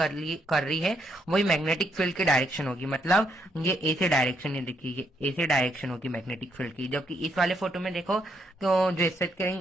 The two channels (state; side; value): normal; both; correlation 0.75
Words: रही है वही मैग्नेटिक फील्ड की डायरेक्शन होगी, मतलब ये ऐसे डायरेक्शन है, देखिए ये ऐसे डायरेक्शन होगी मैग्नेटिक फील्ड की। जबकि इस वाले फोटो में देखो तो जो स्ट्रेट कैरिंग